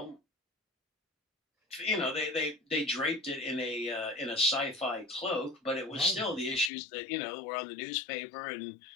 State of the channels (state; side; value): drops out; right; at 6.7 s